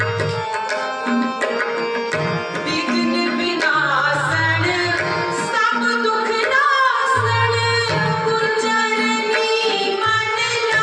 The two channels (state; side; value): identical; both; correlation 1.00